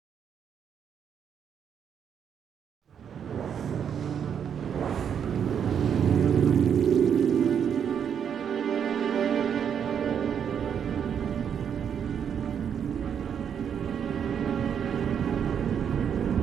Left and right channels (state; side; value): quieter; left; 8.0 dB